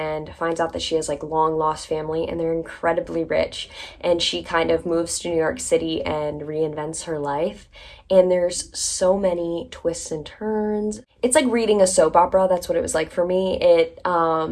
finds out that she has like long lost family, and they're incredibly rich, and she kind of moves to New York City and reinvents her life. And there's so many twists and turns. It's like reading a soap opera. That's what it was like for me. It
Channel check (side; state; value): both; identical; correlation 1.00